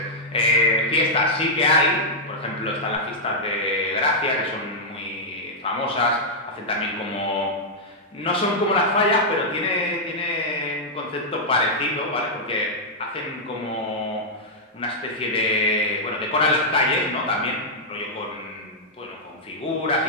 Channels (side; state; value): both; normal; correlation -0.06